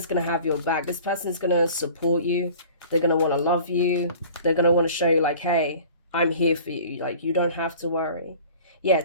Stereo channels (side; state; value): both; inverted; correlation -0.45